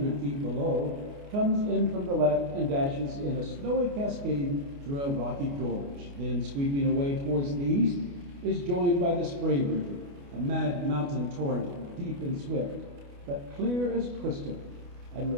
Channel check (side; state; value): left; late; 29 ms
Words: feet below, comes in from the left and dashes in a snowy cascade through a rocky gorge. Then, sweeping away towards the east, is joined by the Spray River, a mad mountain torrent, deep and swift, but clear as crystal, and